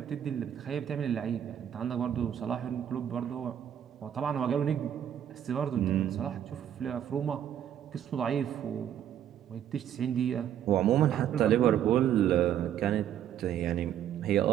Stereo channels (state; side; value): quieter; left; 10.0 dB